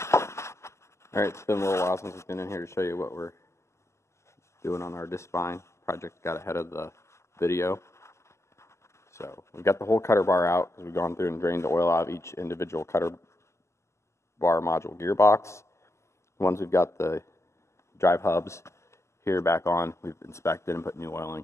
Alright, it's been a little while since I've been in here to show you what we're doing on our Discbine. Project got ahead of the video. So we've got the whole cutter bar out because we've gone through and drained the oil out of each individual cutter bar module gearbox. Once we've got the drive hubs here back on, we've inspected and put new oil in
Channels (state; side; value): late; right; 0.13 ms